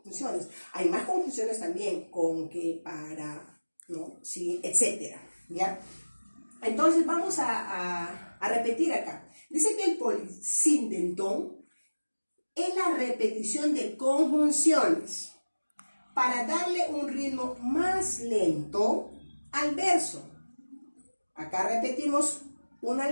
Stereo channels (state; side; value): inverted; both; correlation -1.00